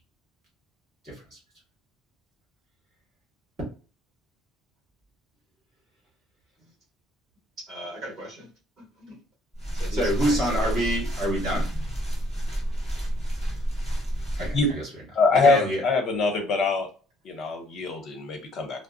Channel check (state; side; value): normal; both; correlation 0.64